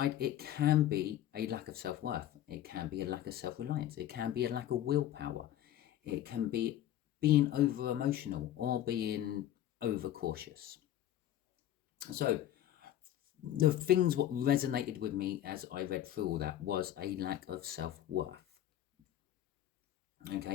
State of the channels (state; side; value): quieter; right; 12.1 dB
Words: it can be a lack of self-worth. It can be a lack of self-reliance. It can be a lack of willpower. It can be being over-emotional or being over-cautious. So the things what resonated with me as I read through all that was a lack of self-worth.